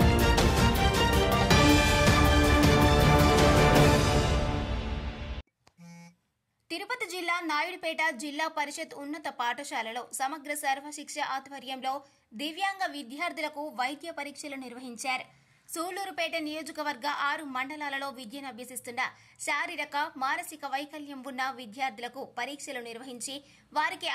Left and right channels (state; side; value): identical; both; correlation 1.00